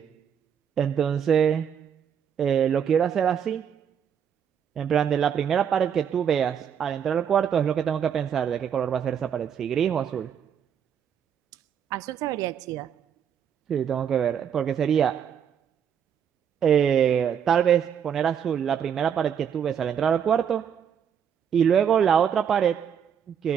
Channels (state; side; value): quieter; left; 8.2 dB